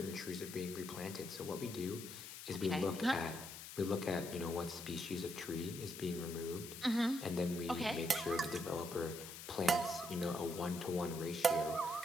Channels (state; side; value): noise; left; hiss, 11 dB below the sound